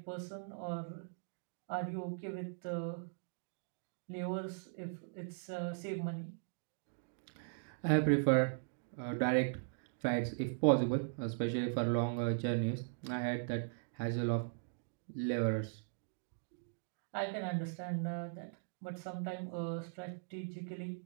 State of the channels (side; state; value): left; silent; digital silence